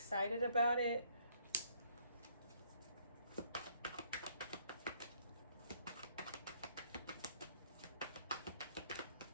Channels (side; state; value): both; inverted; correlation -0.66